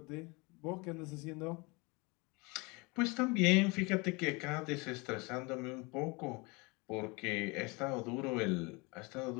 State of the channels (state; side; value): quieter; right; 27.3 dB